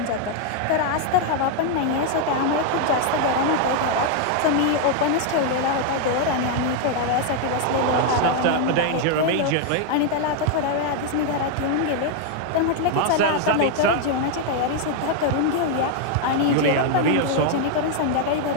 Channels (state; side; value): different; both; correlation 0.00